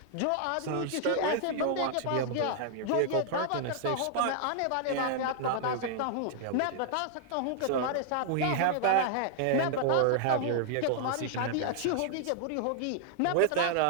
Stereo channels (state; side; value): different; both; correlation -0.01